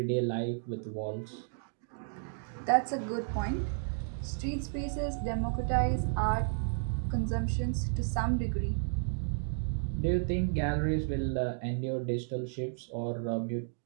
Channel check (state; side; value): silent; left; digital silence